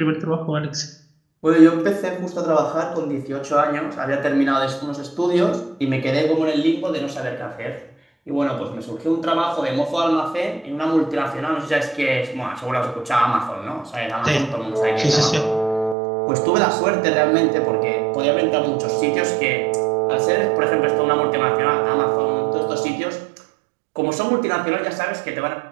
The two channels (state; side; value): drops out; left; at 16.0 s